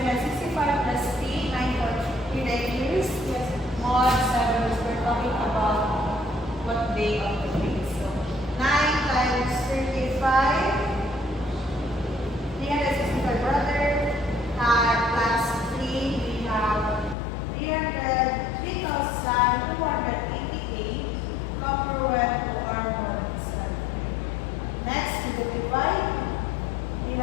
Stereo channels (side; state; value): right; drops out; at 17.2 s